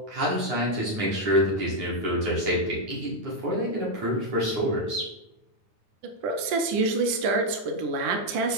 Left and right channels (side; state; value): left; late; 10 ms